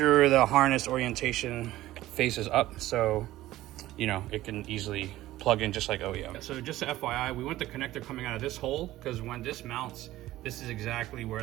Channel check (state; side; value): quieter; left; 15.6 dB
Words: the harness orientation faces up, so you know it can easily plug in just like OEM. So just a FYI, we want the connector coming out of this hole, because when this mounts, this is exactly